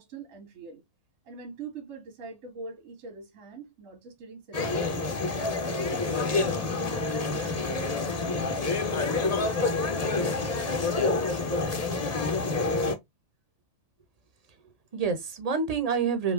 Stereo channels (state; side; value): late; left; 1.8 ms